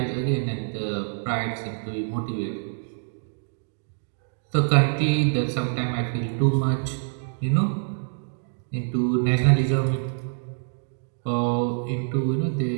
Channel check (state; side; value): silent; left; 61 dB below the other